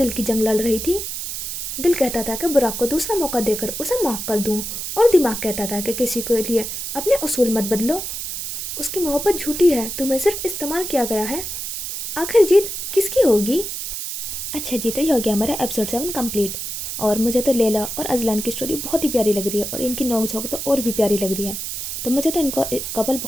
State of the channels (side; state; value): right; noise; hiss, 5 dB below the sound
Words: کی جنگ لڑ رہی تھی۔ دل کہتا تھا کہ براق کو دوسرا موقع دے کر اسے معاف کر دوں، اور دماغ کہتا تھا کہ کسی کے لیے اپنے اصول مت بدلو، اس کی محبت جھوٹی ہے، تمہیں صرف استعمال کیا گیا ہے۔ آخر جیت کس کی ہوگی؟ اچھا جی، تو یہ ہو گیا ہمارا ایپیسوڈ 7 کمپلیٹ، اور مجھے تو لیلا اور ازلان کی سٹوری بہت ہی پیاری لگ رہی ہے، اور ان کی نوک جھونک تو اور بھی پیاری لگ رہی ہے۔ تو مجھے تو ان کا کپل